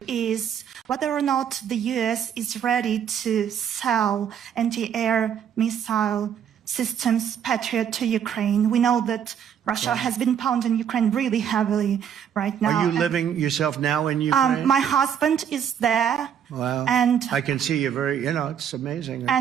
is whether or not the U.S. is ready to sell anti-air missile systems Patriot to Ukraine. We know that Russia has been pounding Ukraine really heavily right now. Are you living yourself now in Ukraine? My husband is there. Wow. And I can see you it's amazing.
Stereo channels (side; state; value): left; quieter; 8.6 dB